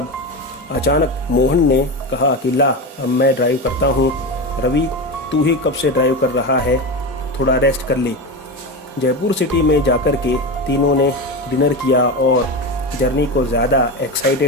अचानक मोहन ने कहा कि ला, अब मैं ड्राइव करता हूं। रवि, तू ही कब से ड्राइव कर रहा है, थोड़ा रेस्ट कर ले। जयपुर सिटी में जाकर के तीनों ने डिनर किया और जर्नी को ज़्यादा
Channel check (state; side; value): normal; both; correlation 0.20